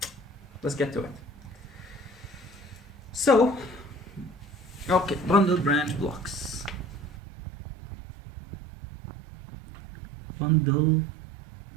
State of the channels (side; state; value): left; drops out; at 7.1 s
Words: Let's get to it. So, okay, bundle branch blocks. Bundle